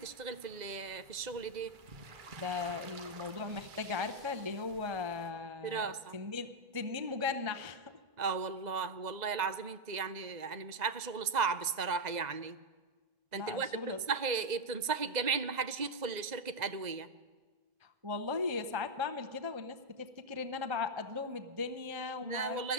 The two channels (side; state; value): left; late; 2.0 ms